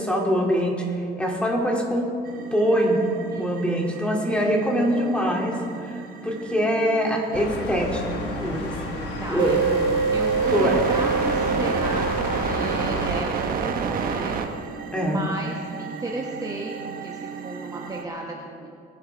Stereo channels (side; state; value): both; normal; correlation 0.37